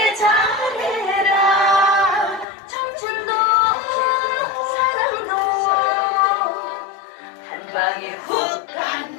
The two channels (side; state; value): right; drops out; at 2.5 s